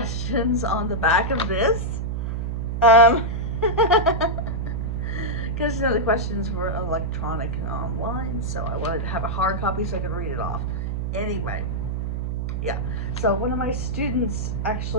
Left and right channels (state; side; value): noise; right; hum, 2 dB below the sound